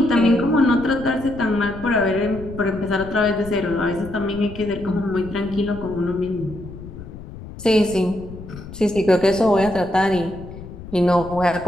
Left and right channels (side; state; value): left; noise; rumble, 14 dB below the sound